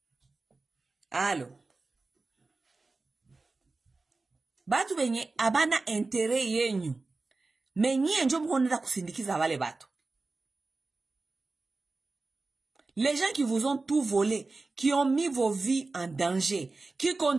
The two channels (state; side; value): quieter; left; 3.6 dB